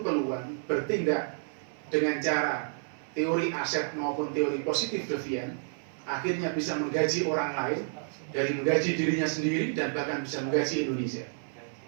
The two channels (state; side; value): silent; left; 57 dB below the other